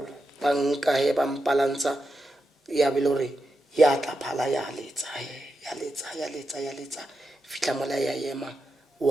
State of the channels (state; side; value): normal; both; correlation 0.88